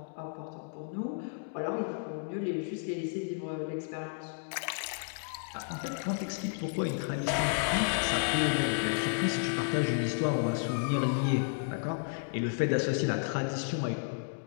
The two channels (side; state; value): right; silent; digital silence